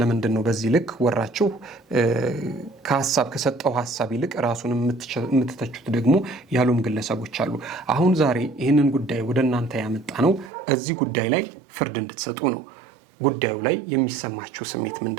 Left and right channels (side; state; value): left; drops out; at 10.5 s